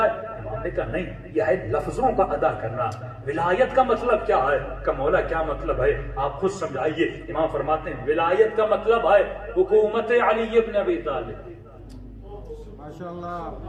امام نے کہا نہیں یہ ہے لفظوں کا ادا کرنا. ولایت کا مطلب کیا ہے. کہ مولا کیا مطلب ہے آپ خود سمجھائیے. امام فرماتے ہیں ولایت کا مطلب ہے حکومت علی ابن ابی طالب. ماشاءاللہ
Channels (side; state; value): both; identical; correlation 1.00